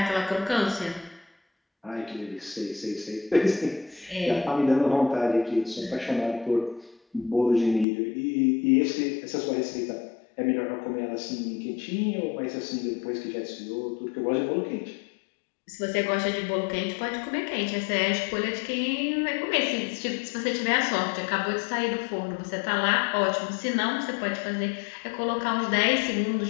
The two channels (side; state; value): right; drops out; at 7.9 s